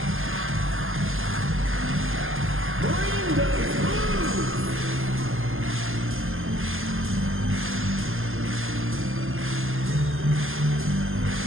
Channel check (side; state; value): left; late; 0.60 ms